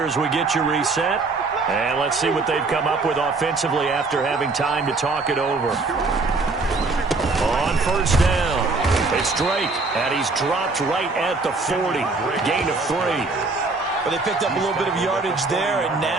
as we get you reset. And let's see what they've come up with offensively after having time to talk it over. On 1st down, it's Drake, and he's dropped right at the 40. Gain of 3. But they picked up a little bit of yardage there, and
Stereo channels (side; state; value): left; quieter; 3.7 dB